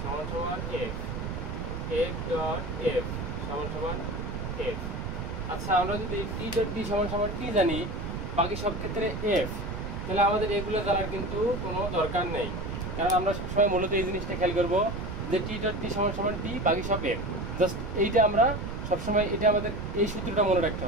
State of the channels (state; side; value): noise; right; rumble, 5 dB below the sound